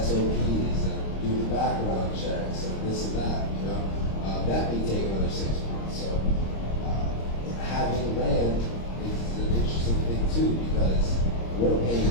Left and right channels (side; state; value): right; late; 26 ms